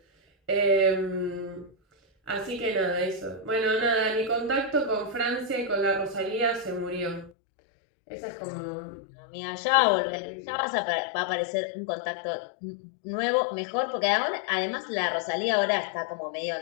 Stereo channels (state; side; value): drops out; right; at 7.3 s